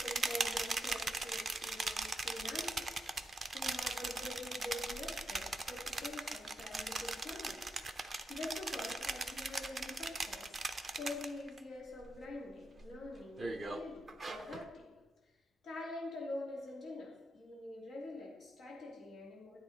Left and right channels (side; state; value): both; normal; correlation 0.84